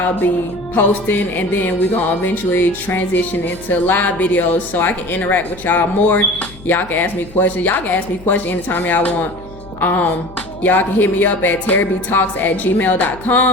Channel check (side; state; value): left; noise; hum, 19 dB below the sound